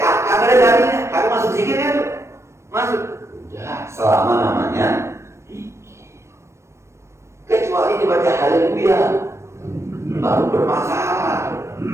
kagak ada dalilnya, kagak masuk zikirnya tuh, masuk. Ya, selama namanya zikir, kecuali dibaca haleluya baru bermasalah.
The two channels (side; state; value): left; late; 0.13 ms